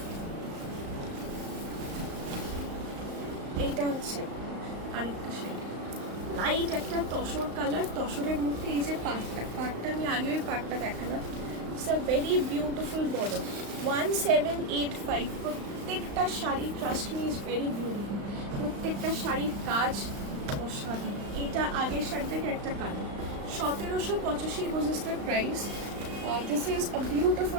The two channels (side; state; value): left; late; 35 ms